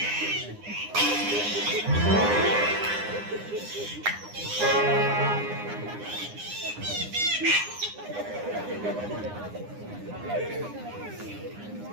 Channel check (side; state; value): left; late; 9.8 ms